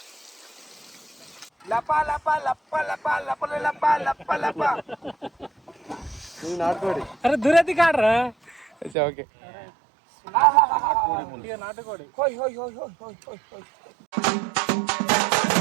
నాటుకోడి. అరే దురతి కాడరా. ఓకే నాటుకోడి.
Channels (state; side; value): drops out; left; at 9.0 s